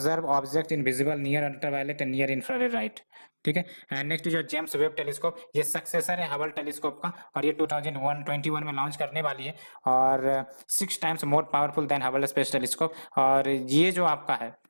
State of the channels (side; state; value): both; inverted; correlation -1.00